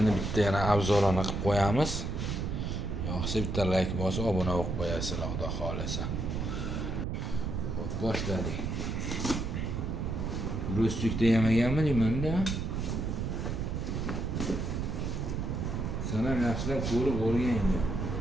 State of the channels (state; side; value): noise; right; rumble, 2 dB below the sound